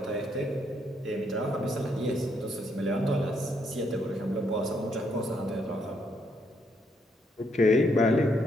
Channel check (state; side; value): normal; both; correlation 0.74